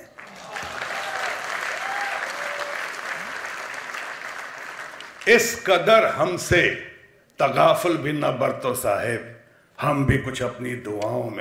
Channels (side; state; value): both; identical; correlation 1.00